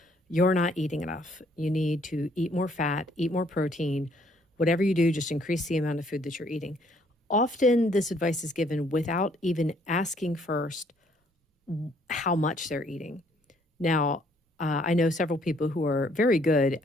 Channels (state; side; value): normal; both; correlation 0.65